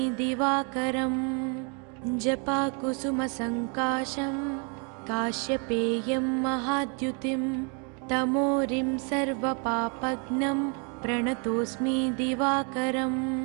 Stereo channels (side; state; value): left; quieter; 36.7 dB